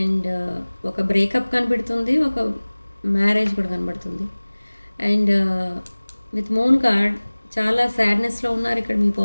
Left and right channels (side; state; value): both; inverted; correlation -1.00